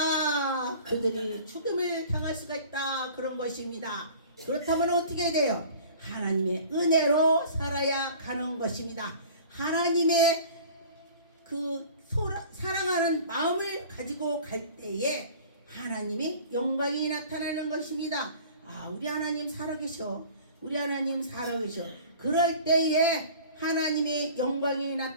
그들이 죽음을 당할 수가 있다. 그런 것입니다. 그렇다면 어떻게 돼요? 하나님의 은혜로 살아야 가는 것입니다. 하나님의 그 사랑하는 마음을 가지고 갈 때에 하나님이 영광이 나타나는 것입니다. 우리 하나님 살아계셔. 우리 하나님 살아계셔. 그럴 때에 하나님의 영광이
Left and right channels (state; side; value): inverted; both; correlation -0.45